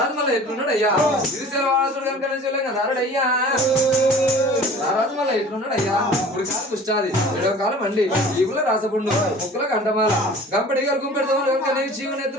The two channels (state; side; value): normal; both; correlation 0.44